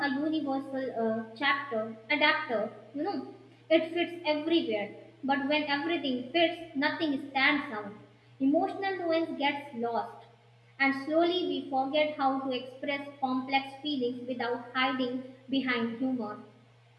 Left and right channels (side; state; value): both; identical; correlation 1.00